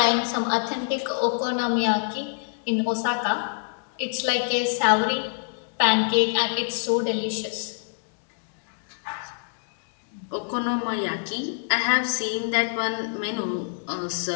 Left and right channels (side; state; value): right; silent; digital silence